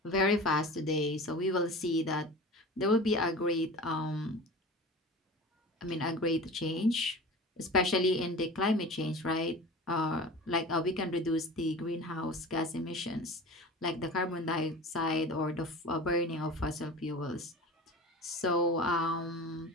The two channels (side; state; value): both; normal; correlation 0.35